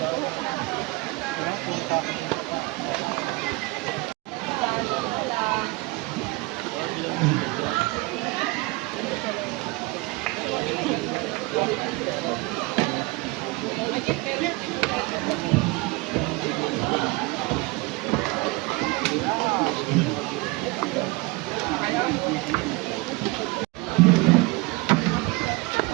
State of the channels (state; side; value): quieter; left; 24.0 dB